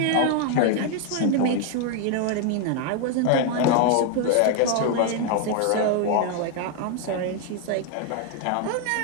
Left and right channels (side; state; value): both; different; correlation 0.00